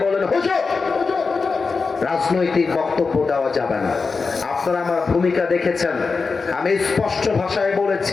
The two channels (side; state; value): right; quieter; 4.5 dB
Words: বলেন, হুজুর রাজনৈতিক বক্তব্য দেওয়া যাবে না। আপনারা আমার ভূমিকা দেখেছেন, আমি স্পষ্ট ভাষায়